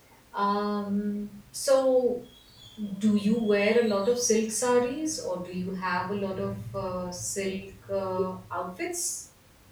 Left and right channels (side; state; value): both; identical; correlation 1.00